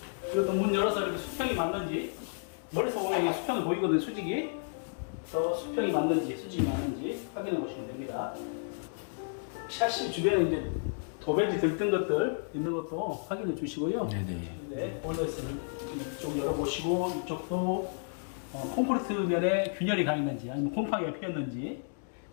그리고 또 문 열어서 이렇게 수평이 맞는지, 멀리서 보면 이게 수평이 보이거든요, 수직이. 또 수평이 맞는지, 수직이 맞는지 확인해 보시면 됩니다. 샤시 주변에 이제 도배지 들뜬 것들 있는 것도 확인해 주시고요. 네네. 네, 보일러에서는 이쪽 열어보시고, 이쪽도 콘크리트 면에 균열이 가 있는지, 아니면 곰팡이가 피었는지,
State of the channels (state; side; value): silent; right; digital silence